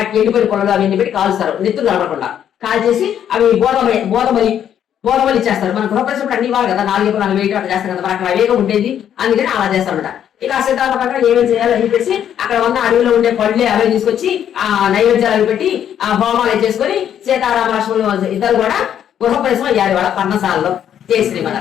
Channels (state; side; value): quieter; right; 9.7 dB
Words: ఎండిపోయిన పొలంలో అవన్నీ పెట్టి కాలుస్తారు, నెత్తులు కనపడకుండా కాల్చేసి అవి బోధమలి ఇచ్చేస్తారు. మన గృహప్రవేశం అన్ని ఇవ్వాలి కదా, 4 ఎకరాలు 4 అట్లా చేస్తారు కదా, మనకు అవేగం ఉండేది, అందుకని అలా చేస్తారన్నమాట. ఇక ఆ సిద్ధాంత ప్రకారం ఏమేమి చేయాలి అని చెప్పేసి అక్కడ ఉన్న అడవిలో ఉండే పళ్ళే అవే తీసుకొచ్చి ఆ నైవేద్యాలు పెట్టి ఆ హోమాలు చేసుకొని సీతారామ లక్ష్మణులు ఇద్దరు కూడా గృహప్రవేశం అయ్యారు వాళ్ళ పర్ణశాలలో. జై